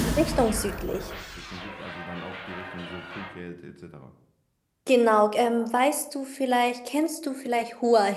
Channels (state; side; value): identical; both; correlation 1.00